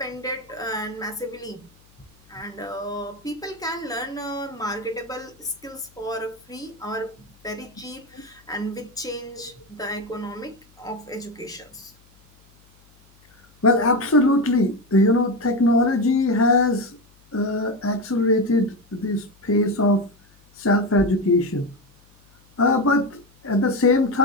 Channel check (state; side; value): noise; left; hum, 30 dB below the sound